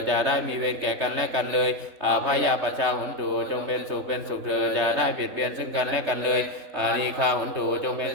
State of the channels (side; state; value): left; late; 3.3 ms